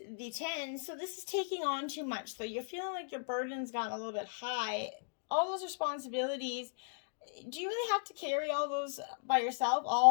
the 10, so this is taking on too much. So you're feeling like your burden's gotten a little bit high. All those responsibilities, do you really have to carry all those by yourself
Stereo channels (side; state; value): right; silent; digital silence